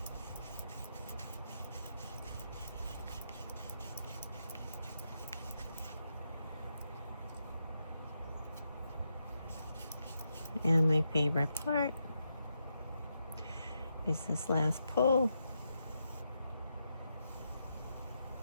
And my favorite part is this last pull.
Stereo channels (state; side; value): inverted; both; correlation -0.83